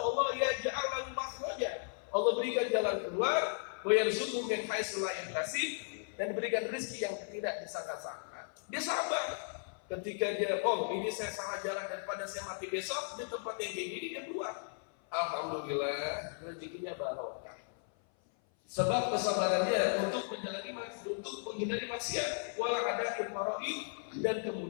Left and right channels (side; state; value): right; silent; 54 dB below the other